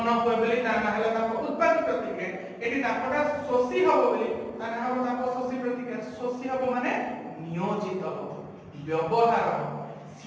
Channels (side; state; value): both; identical; correlation 1.00